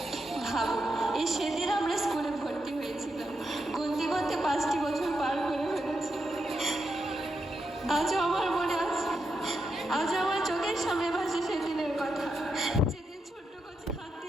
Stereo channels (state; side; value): normal; both; correlation 0.84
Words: ভাবুন, এই সেদিন আমরা স্কুলে ভর্তি হয়েছিলাম, গুনতে গুনতে 5টি বছর পার করে ফেলেছি। আজও আমার মনে আছে, আজও আমার চোখের সামনে ভাসে সেদিনের কথা, যেদিন ছোট্ট কচি হাত